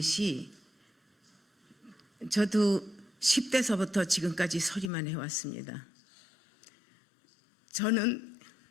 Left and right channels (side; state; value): right; drops out; at 4.9 s